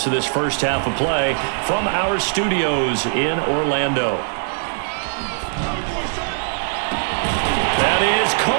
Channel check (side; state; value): left; silent; digital silence